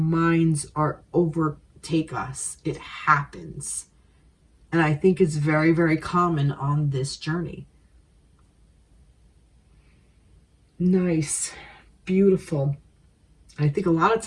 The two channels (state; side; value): identical; both; correlation 1.00